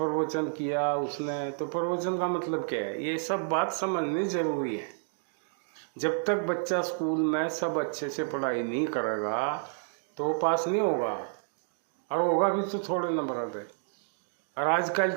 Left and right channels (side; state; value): left; silent; digital silence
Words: किया उसने, तो प्रवचन का मतलब क्या है, ये सब बात समझनी जरूरी है। जब तक बच्चा स्कूल में सब अच्छे से पढ़ाई नहीं करेगा तो वो पास नहीं होगा, और होगा भी तो थोड़े नंबर पे। और आजकल